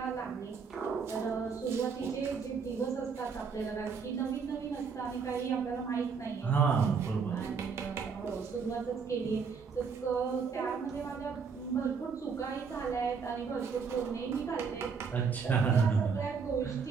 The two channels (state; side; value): quieter; left; 5.7 dB